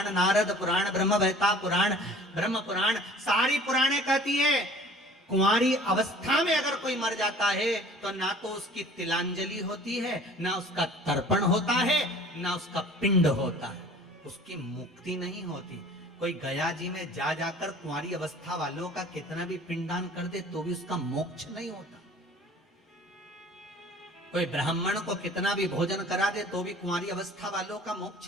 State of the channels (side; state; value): both; normal; correlation 0.48